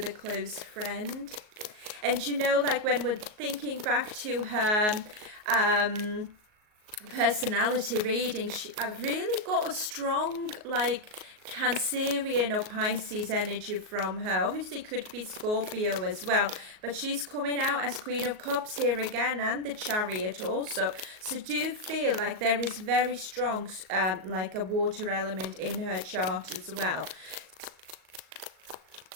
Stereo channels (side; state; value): left; late; 38 ms